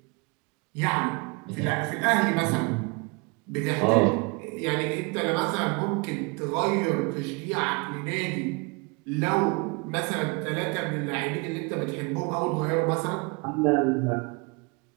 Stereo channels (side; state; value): left; quieter; 30.0 dB